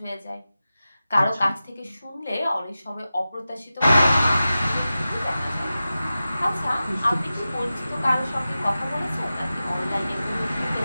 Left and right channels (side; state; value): both; inverted; correlation -0.94